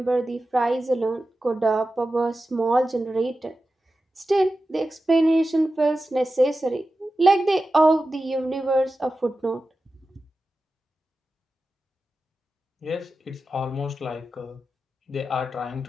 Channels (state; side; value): normal; both; correlation 0.93